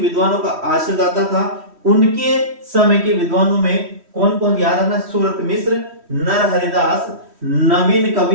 विद्वानों का आश्रयदाता था। उनके समय के विद्वानों में कौन कौन याद रखना? सूरत मिश्र, नरहरिदास, नवीन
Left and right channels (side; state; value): left; late; 3.1 ms